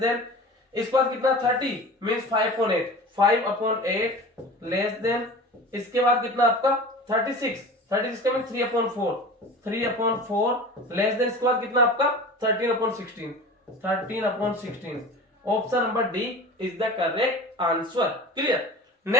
इसके बाद कितना 30 मींस 5/8, 5/8 लेस देन, इसके बाद कितना आपका 36 का मीन 3/4, 3/4 लेस देन, इसके बाद कितना आपका 13/16, 13/16 option number D is the correct answer. Clear.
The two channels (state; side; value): normal; both; correlation 0.37